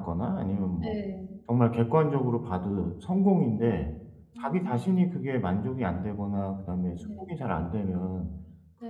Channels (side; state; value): both; identical; correlation 1.00